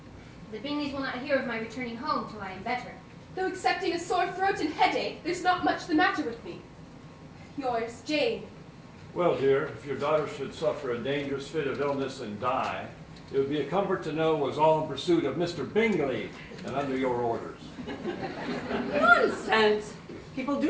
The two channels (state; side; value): identical; both; correlation 1.00